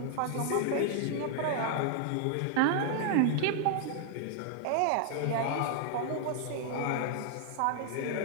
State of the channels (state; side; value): different; both; correlation 0.00